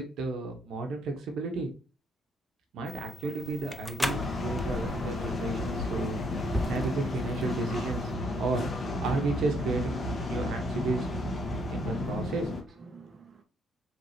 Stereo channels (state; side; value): normal; both; correlation 0.70